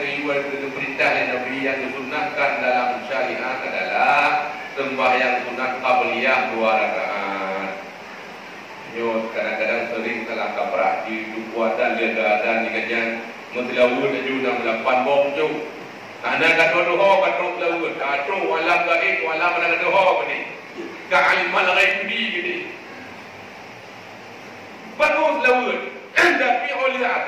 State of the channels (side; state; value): both; identical; correlation 1.00